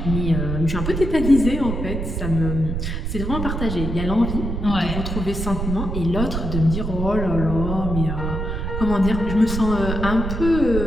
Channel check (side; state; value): right; noise; rumble, 3 dB below the sound